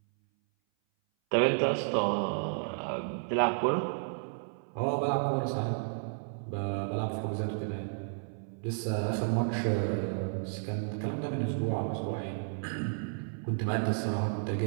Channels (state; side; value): silent; left; 56 dB below the other